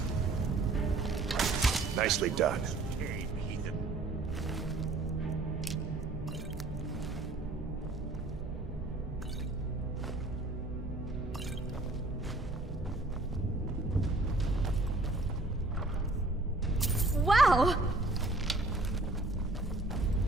Nicely done. Wow!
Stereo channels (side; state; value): left; quieter; 3.0 dB